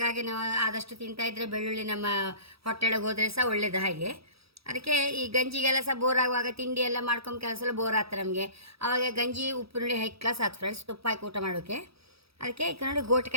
ನಾವು ಆದಷ್ಟು ತಿಂತಾ ಇದ್ದರೆ ಬೆಳ್ಳುಳ್ಳಿ ನಮ್ಮ ಹೊಟ್ಟೆೊಳಗೆ ಹೋದರೆ ಸಹ ಒಳ್ಳೆಯದು. ಹಾಗೆ ಅದಕ್ಕೆ ಈ ಗಂಜಿಗೆಲ್ಲ ಸಹ ಬೋರ್ ಆಗುವಾಗ ತಿಂಡಿ ಎಲ್ಲ ಮಾಡ್ಕೊಂಡು ಕೆಲಸ ಬೋರ್ ಆಗ್ತದೆ ನಮಗೆ. ಆವಾಗ ಗಂಜಿ ಉಪ್ಪುರುಳಿ ಹೈ ಕ್ಲಾಸ್ ಆಯ್ತು ಫ್ರೆಂಡ್ಸ್, ತುಪ್ಪ ಹಾಕಿ ಊಟ ಮಾಡೋಕ್ಕೆ. ಅದಕ್ಕೆ ಈಗ ನೋಡಿ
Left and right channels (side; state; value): left; late; 0.77 ms